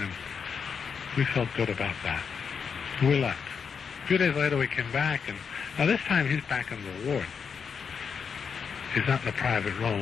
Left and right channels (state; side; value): quieter; right; 6.3 dB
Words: and we felt good about that. We left. A few days later, we came back, and now this time he's back in the ward. He's not in the private room.